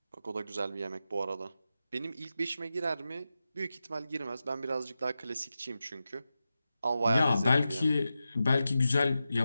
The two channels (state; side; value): inverted; both; correlation -0.91